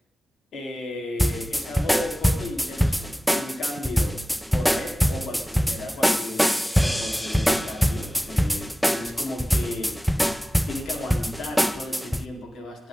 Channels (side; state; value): both; normal; correlation 0.97